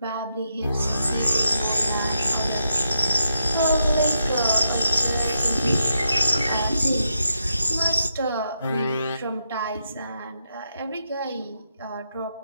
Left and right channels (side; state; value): both; inverted; correlation -0.83